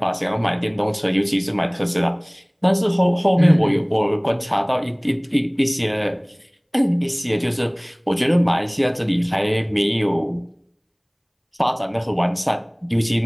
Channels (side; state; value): both; identical; correlation 1.00